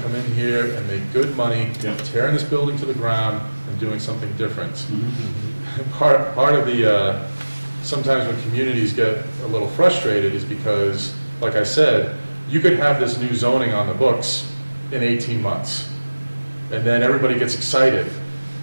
come in here and make good money, Yeah. tearing this building to the ground and doing something different. Part of the, sometimes when communities get a little frustrated is because, like I said, you could have this new zoning on the books in 18 months. And then everybody gets excited,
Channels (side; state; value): both; inverted; correlation -1.00